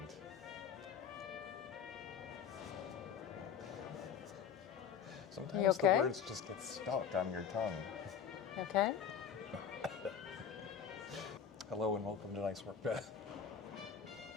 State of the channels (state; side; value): quieter; right; 7.6 dB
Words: Sometimes okay? the words just get stuck on your tongue. Okay? Hello and welcome to Nice Work, Beth.